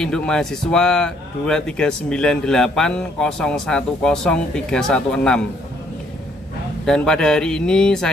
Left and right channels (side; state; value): both; normal; correlation 0.67